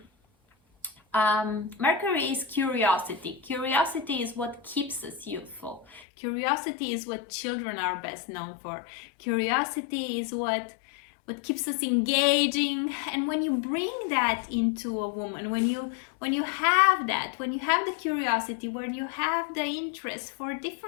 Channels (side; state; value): right; drops out; at 6.1 s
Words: Mercury is curiosity. Curiosity is what keeps us youthful. Curiosity is what children are best known for. Curiosity is what keeps us engaging. And when you bring that into a woman, when you have that, when you have the curiosity, when you have the interest for